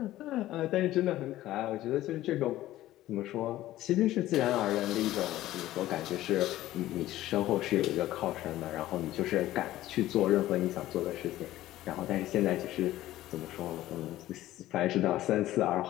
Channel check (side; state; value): right; quieter; 15.0 dB